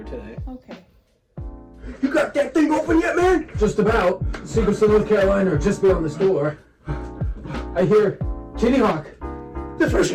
today. Okay. You got that thing open yet, man? Just about. Secrets of North Carolina are just beyond this door. I hear Kitty Hawk. The first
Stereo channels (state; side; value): identical; both; correlation 1.00